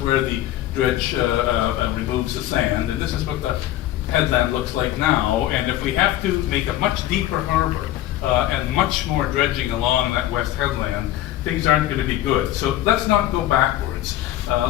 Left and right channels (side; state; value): right; quieter; 14.0 dB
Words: the dredge removes the sand. And this is what the headland looks like now. And if we have to make a much deeper harbor and much more dredging along that west headland, things aren't going to be good. So let's not go backwards.